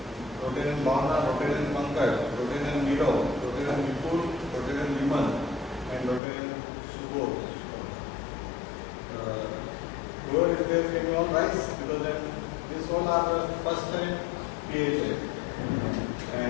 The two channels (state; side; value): drops out; right; at 6.2 s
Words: Rotarian Bhavna, Rotarian Pankaj, Rotarian Nirav, Rotarian Vipul, Rotarian Viman, and Rotarian Subodh. Whoever is there, can you all rise? Because then this all are the first time PHA.